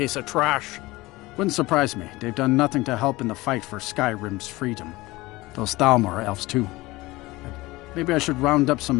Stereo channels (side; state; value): right; quieter; 20.4 dB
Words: of trash! Wouldn't surprise me. They've done nothing to help in the fight for Skyrim's freedom. Those Thalmor are elves too. Maybe I should round up